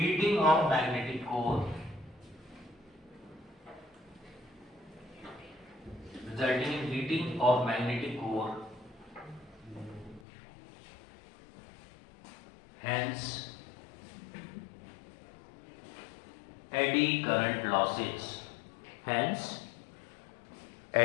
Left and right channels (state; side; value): drops out; right; at 10.2 s